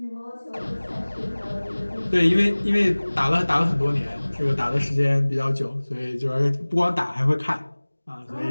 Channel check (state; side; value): inverted; both; correlation -1.00